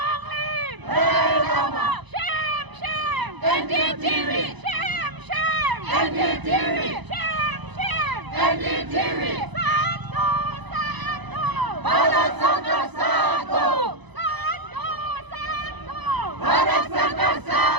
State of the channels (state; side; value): late; left; 1.0 ms